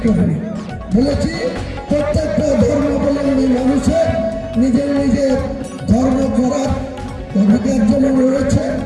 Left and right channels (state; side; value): identical; both; correlation 1.00